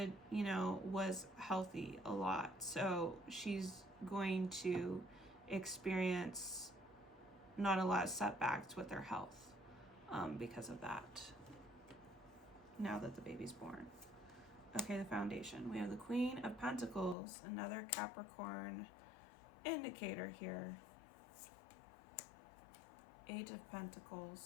was healthy a lot. So she's going to experience not a lot of setbacks with her health because of that, now that the baby's born. Okay, the foundation. We have the Queen of Pentacles, another Capricorn indicator here. 8 of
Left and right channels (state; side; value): drops out; right; at 17.2 s